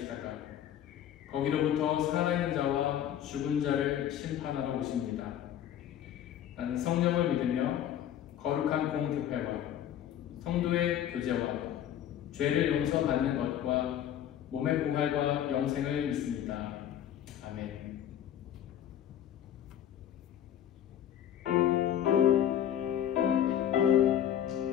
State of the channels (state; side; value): quieter; right; 10.6 dB